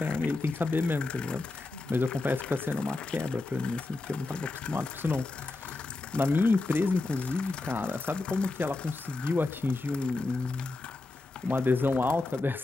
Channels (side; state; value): right; quieter; 3.2 dB